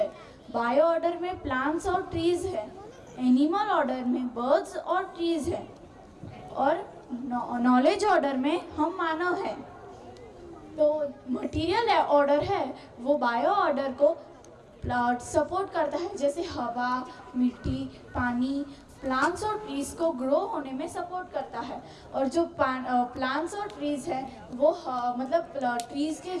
बायो ऑर्डर में प्लांट्स और ट्रीज है, एनिमल ऑर्डर में बर्ड्स और ट्रीज है और नॉलेज ऑर्डर में हम मानव हैं। तो मटेरियल ऑर्डर है वो बायो ऑर्डर को सपोर्ट करता है, जैसे हवा, मिट्टी, पानी, प्लांट्स और ट्रीज को ग्रो होने में सपोर्ट करता है। और जो प्लांट्स और ट्रीज है वो मतलब ट्रीज के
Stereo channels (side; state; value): both; identical; correlation 1.00